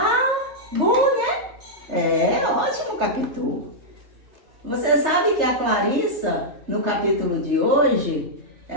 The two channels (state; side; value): late; left; 3.3 ms